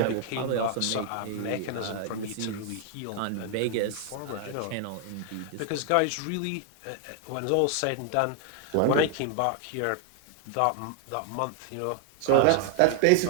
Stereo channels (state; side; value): different; both; correlation 0.00